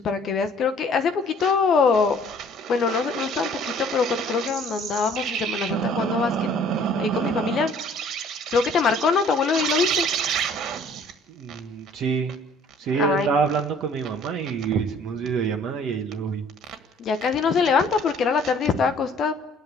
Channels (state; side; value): normal; both; correlation 0.55